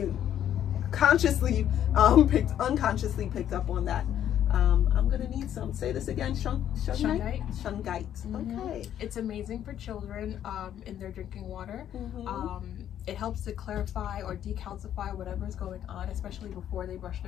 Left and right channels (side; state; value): right; quieter; 10.5 dB